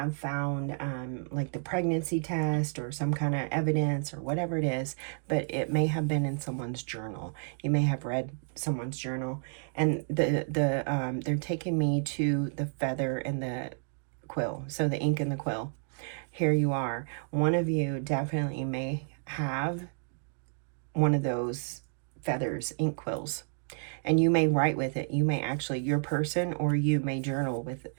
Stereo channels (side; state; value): left; silent; 57 dB below the other